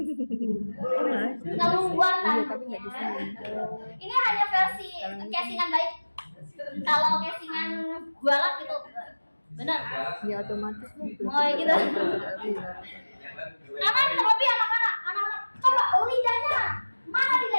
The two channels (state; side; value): inverted; both; correlation -1.00